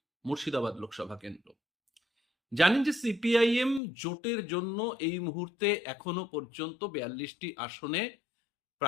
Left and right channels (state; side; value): drops out; right; at 3.8 s